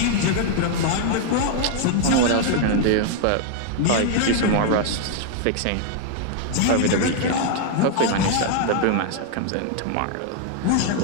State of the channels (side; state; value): both; different; correlation 0.00